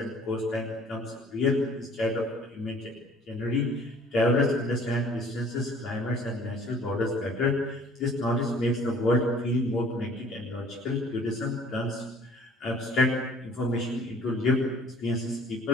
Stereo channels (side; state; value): both; normal; correlation 0.53